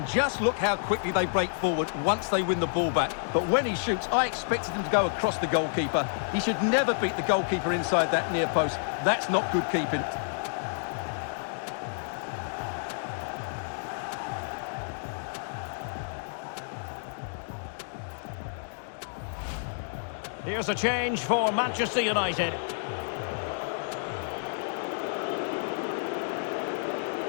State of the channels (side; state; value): right; silent; digital silence